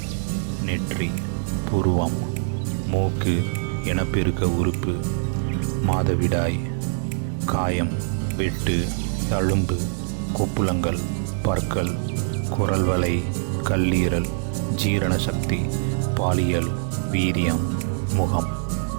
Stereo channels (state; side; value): silent; left; digital silence